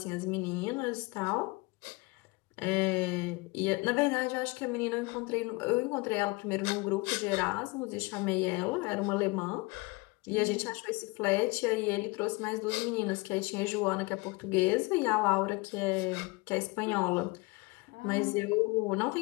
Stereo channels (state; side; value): quieter; right; 25.7 dB